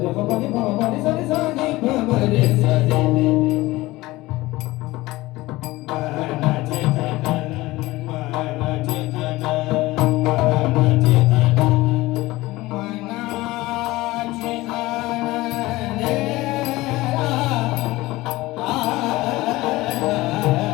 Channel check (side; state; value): right; quieter; 19.2 dB